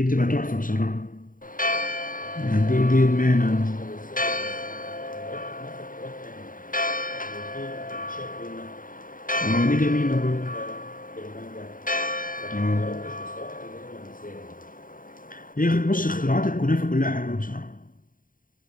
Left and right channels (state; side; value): late; right; 0.40 ms